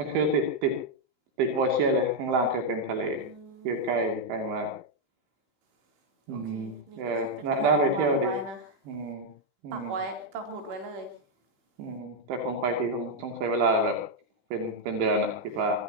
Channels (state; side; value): late; left; 16 ms